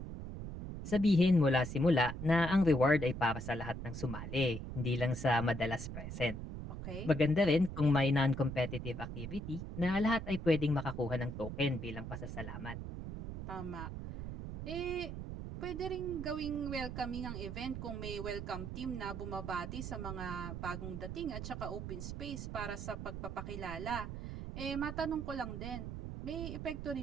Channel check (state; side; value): noise; right; rumble, 7 dB below the sound